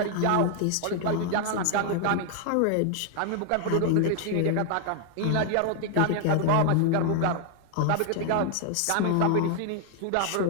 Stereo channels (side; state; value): both; different; correlation 0.00